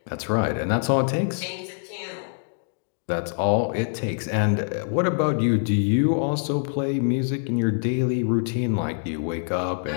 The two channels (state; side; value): silent; right; digital silence